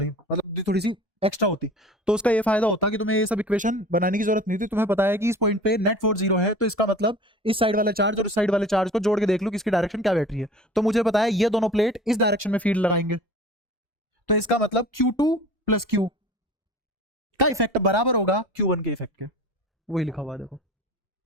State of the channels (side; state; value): both; normal; correlation 0.41